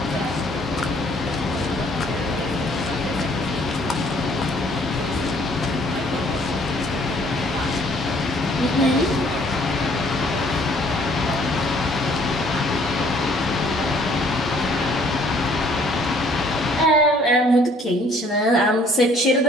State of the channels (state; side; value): normal; both; correlation 0.60